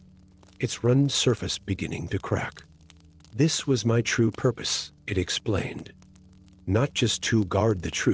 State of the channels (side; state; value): both; identical; correlation 1.00